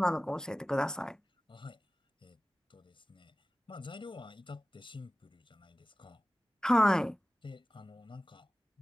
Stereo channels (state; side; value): normal; both; correlation 0.97